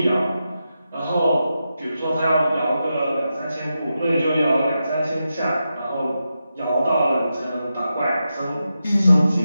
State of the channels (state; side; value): inverted; both; correlation -0.88